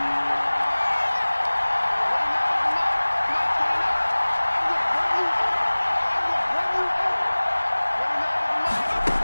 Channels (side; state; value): both; inverted; correlation -1.00